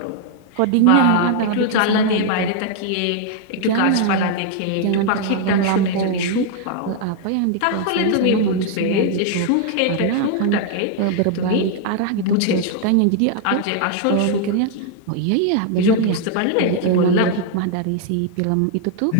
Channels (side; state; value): both; different; correlation 0.00